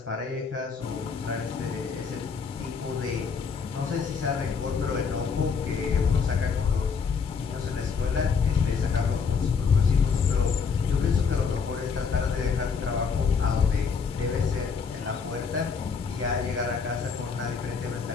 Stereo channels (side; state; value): right; quieter; 5.6 dB